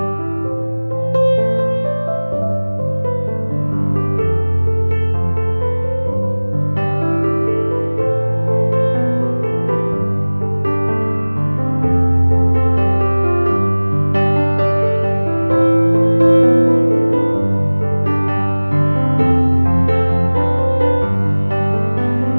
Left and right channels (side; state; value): both; inverted; correlation -1.00